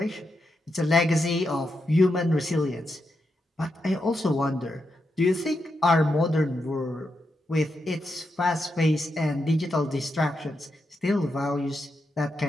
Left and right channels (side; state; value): both; normal; correlation 0.85